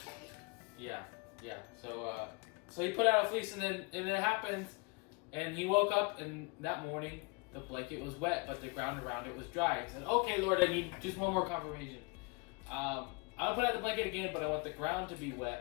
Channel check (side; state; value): right; quieter; 30.0 dB